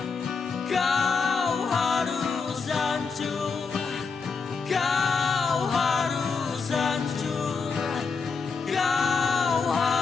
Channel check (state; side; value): quieter; right; 5.1 dB